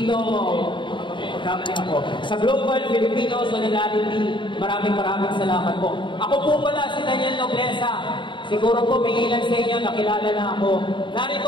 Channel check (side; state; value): right; late; 0.23 ms